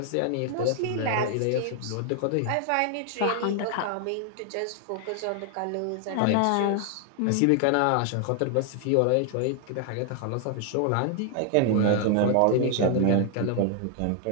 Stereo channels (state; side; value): different; both; correlation 0.00